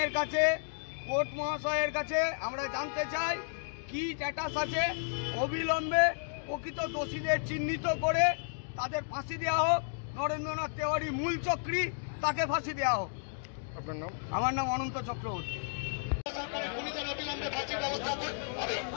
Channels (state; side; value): silent; right; digital silence